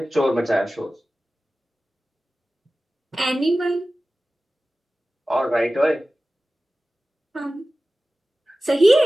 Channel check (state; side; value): normal; both; correlation 0.96